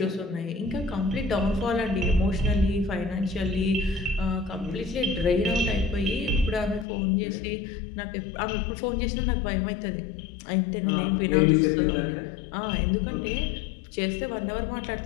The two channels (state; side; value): drops out; right; at 6.9 s